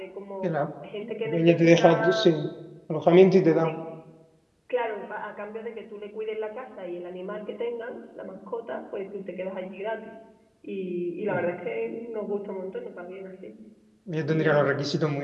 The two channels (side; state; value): both; identical; correlation 1.00